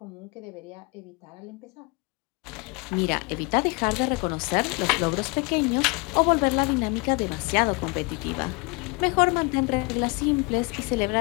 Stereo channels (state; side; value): quieter; right; 28.7 dB